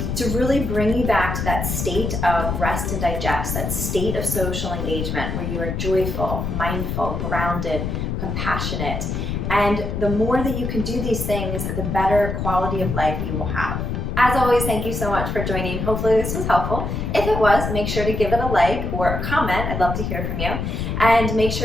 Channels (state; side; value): noise; left; rumble, 2 dB below the sound